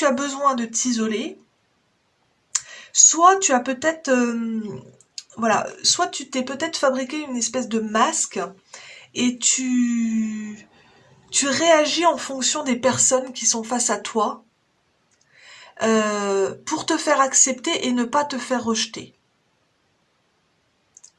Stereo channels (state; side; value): identical; both; correlation 1.00